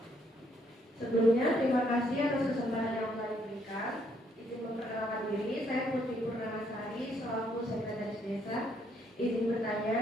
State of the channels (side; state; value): both; normal; correlation 0.70